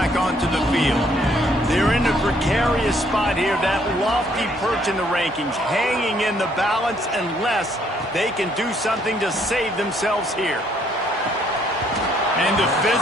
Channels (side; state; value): both; normal; correlation 0.67